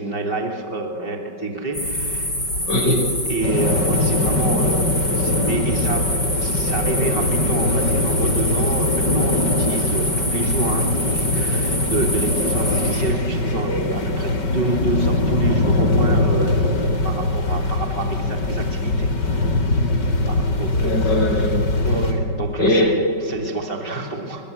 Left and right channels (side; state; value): right; late; 5.3 ms